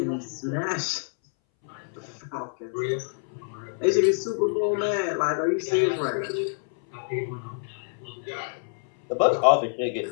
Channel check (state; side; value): silent; right; 60 dB below the other